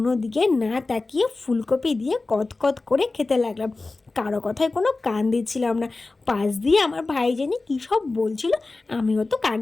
দিকে না তাকিয়ে ফুলকপি দিয়ে কত করে খেতে লাগলাম। কারো কথায় কোনো কান দিচ্ছিলাম না। পাশ দিয়ে আমার ভাই জানি কী সব বলছিল, আমিও তো কান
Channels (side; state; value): right; quieter; 3.5 dB